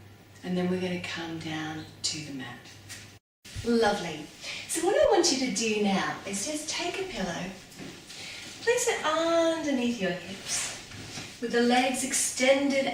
And then we're going to come down to the mat. Lovely. So what I want you to do now is just take a pillow, place it underneath your hips, with the legs extended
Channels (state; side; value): identical; both; correlation 1.00